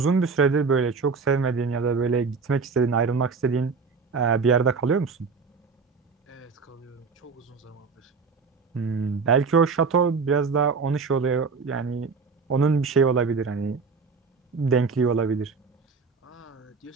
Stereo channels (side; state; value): left; quieter; 4.9 dB